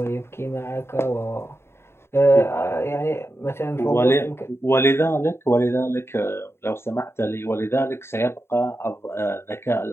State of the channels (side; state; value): right; late; 0.12 ms